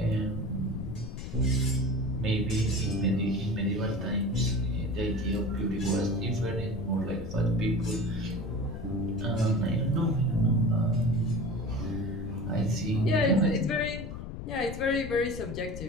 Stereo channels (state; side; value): noise; left; rumble, 8 dB below the sound